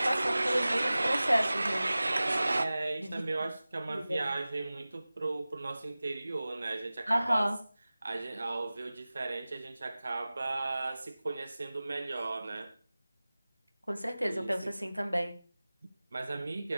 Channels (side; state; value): both; inverted; correlation -0.97